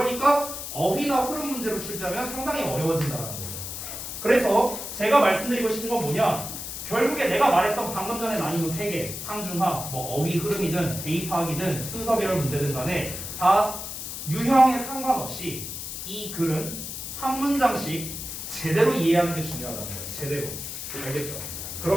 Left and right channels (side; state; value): left; noise; hiss, 7 dB below the sound